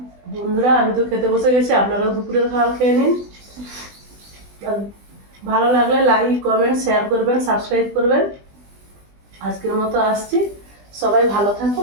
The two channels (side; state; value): left; late; 20 ms